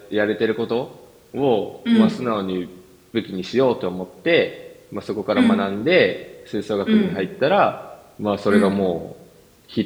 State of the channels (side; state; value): both; identical; correlation 1.00